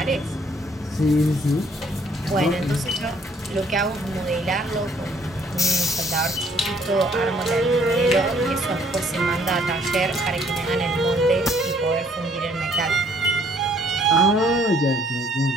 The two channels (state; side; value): normal; both; correlation 0.63